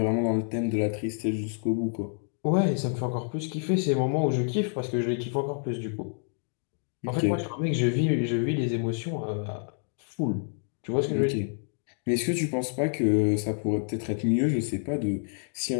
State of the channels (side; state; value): right; silent; 59 dB below the other